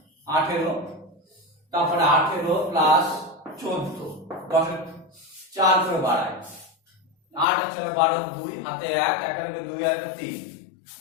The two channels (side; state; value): right; drops out; at 7.5 s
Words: 18, তারপরে 18 প্লাস 14, 10 এর 4 করে বাড়ায়, 8 আর 4 12, 2 হাতে 1, 1 আর 2 আর 3,